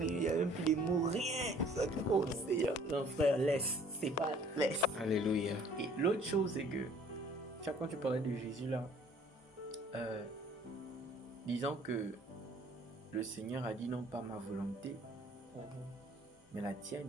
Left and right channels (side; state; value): both; normal; correlation 0.55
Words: il n'y a même plus les mots, rien. Ça te oh, Seigneur. Non, frère, laisse. C'est pas laisse. Alléluia. Et l'autre chose, c'est que, quand tu parlais de Jésus là, disant que le Seigneur a dit non pas ma volonté, mais la